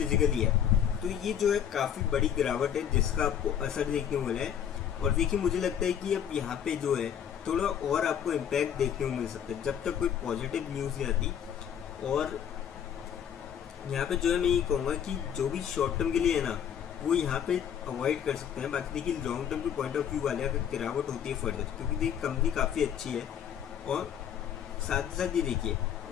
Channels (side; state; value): right; quieter; 9.0 dB